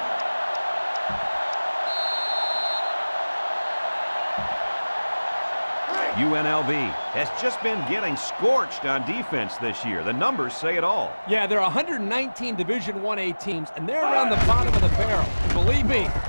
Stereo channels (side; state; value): both; inverted; correlation -1.00